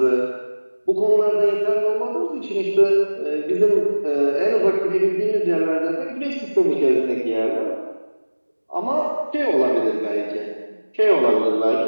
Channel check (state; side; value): inverted; both; correlation -1.00